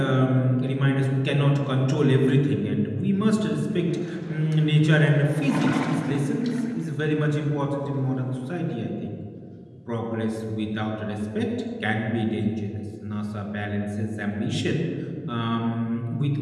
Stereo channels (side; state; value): both; identical; correlation 1.00